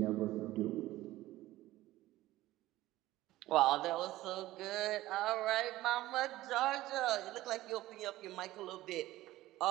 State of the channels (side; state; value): left; quieter; 16.3 dB